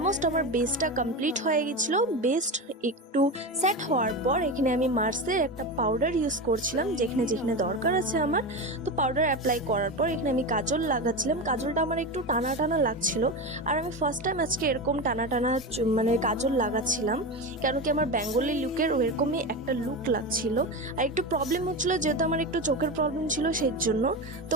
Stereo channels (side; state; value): both; normal; correlation 0.21